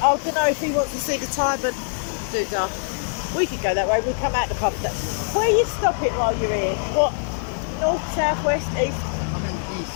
I don't know if he wants to see the Tyburn doodah. We could go that way. We'll come out the pub. Where are you stopping while you're here? What? North, south, west, east? I'm in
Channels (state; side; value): silent; right; digital silence